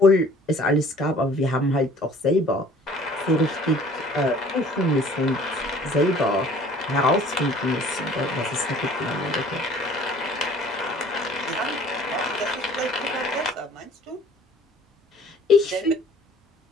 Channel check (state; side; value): normal; both; correlation 0.52